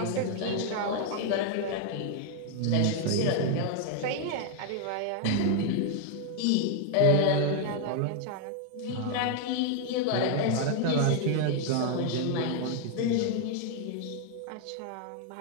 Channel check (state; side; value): different; both; correlation 0.00